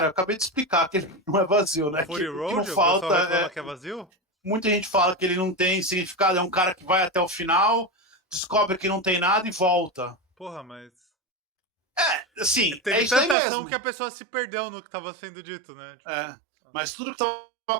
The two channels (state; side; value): drops out; left; at 13.4 s